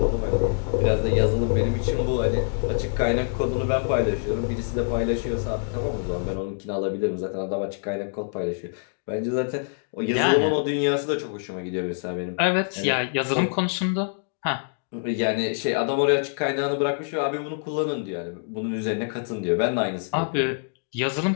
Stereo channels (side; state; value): right; silent; digital silence